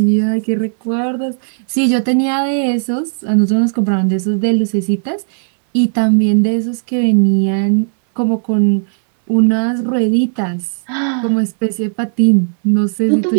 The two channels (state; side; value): silent; left; 61 dB below the other